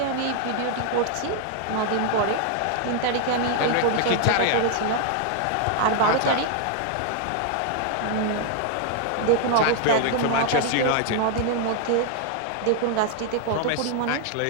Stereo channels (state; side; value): different; both; correlation 0.00